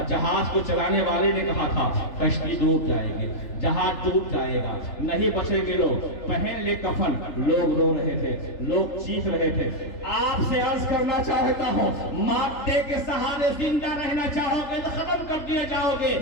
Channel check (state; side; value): late; right; 3.4 ms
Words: جہاز کو چلانے والے نے کہا تھا کشتی ڈوب جائے گی، جہاز ڈوب جائے گا، نہیں بچیں گے لوگ. پہن لے کفن. لوگ رو رہے تھے، لوگ چیخ رہے تھے. آپ سے عرض کرنا چاہتا ہوں، مادے کے سہارے زندہ رہنا چاہو گے تو ختم کر دیے جاؤ گے.